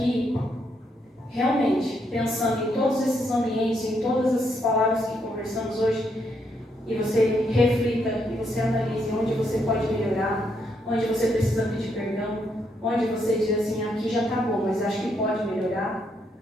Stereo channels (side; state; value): both; normal; correlation 0.76